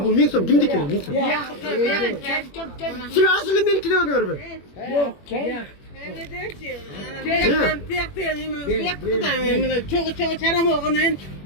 бұл 1000 сом? Кимдікі 1000 сом? Сілер асылы менікі де өңір бі? Yok, gel. Çok çaram oğunen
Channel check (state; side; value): late; right; 21 ms